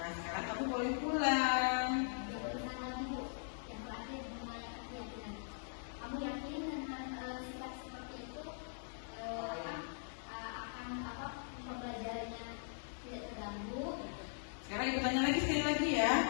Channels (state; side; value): silent; right; digital silence